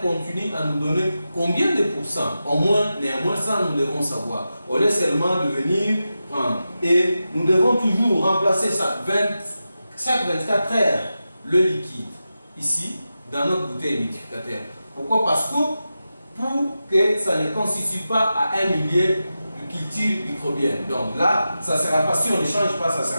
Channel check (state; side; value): inverted; both; correlation -0.91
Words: à nous donner combien de pourcents. Au moins, néanmoins, ça nous devons savoir. Au lieu seulement de venir prendre. Et nous devons toujours remplacer ça chaque 24 heures le liquide ici dans notre bouteille humidificateur. Pourquoi? Parce que pour que ça ne constitue pas à un millier de culture microbienne. Donc là, ça ne sera pas, si on ne change pas, ça ne